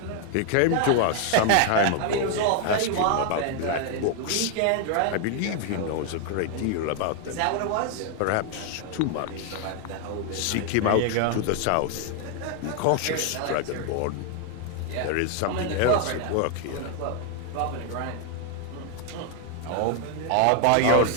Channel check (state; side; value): different; both; correlation 0.00